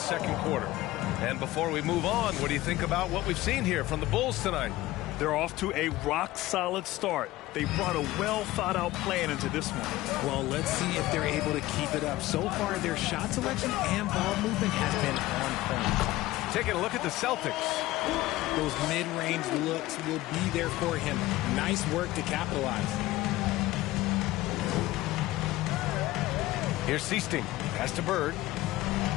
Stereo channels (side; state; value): right; quieter; 17.3 dB